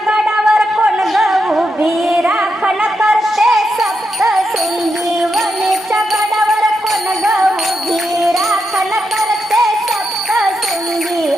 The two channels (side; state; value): both; normal; correlation 0.84